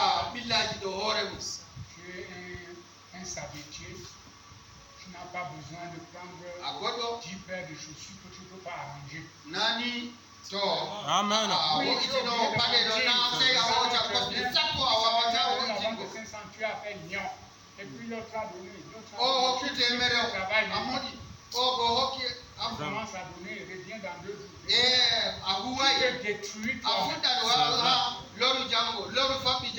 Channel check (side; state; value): both; identical; correlation 1.00